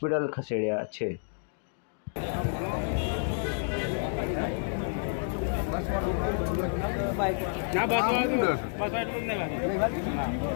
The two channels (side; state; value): right; silent; digital silence